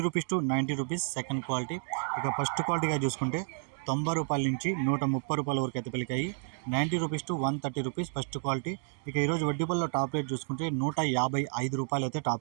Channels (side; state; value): left; silent; 57 dB below the other